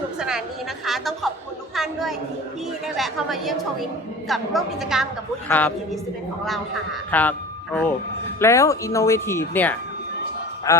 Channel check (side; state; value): both; normal; correlation 0.38